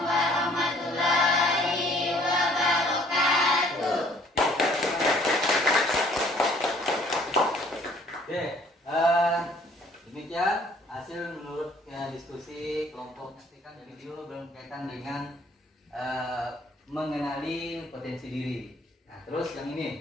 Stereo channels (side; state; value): both; normal; correlation 0.58